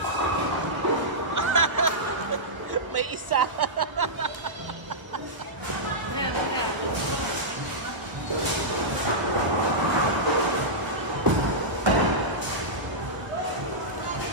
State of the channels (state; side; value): late; left; 1.2 ms